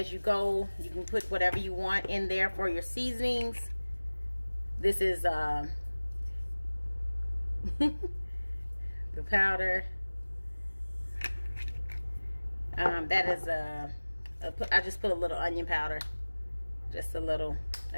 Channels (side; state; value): both; inverted; correlation -1.00